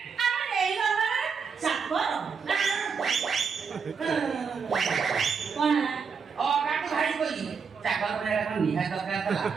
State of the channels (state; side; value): quieter; left; 5.8 dB